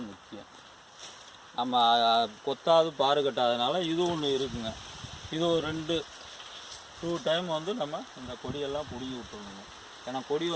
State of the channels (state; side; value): identical; both; correlation 1.00